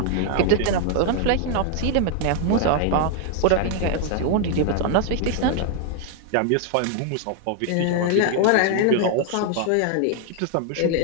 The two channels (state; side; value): different; both; correlation 0.00